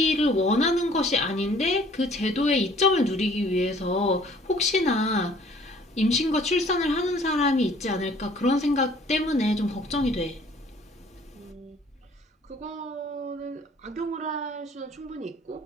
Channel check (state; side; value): normal; both; correlation 0.55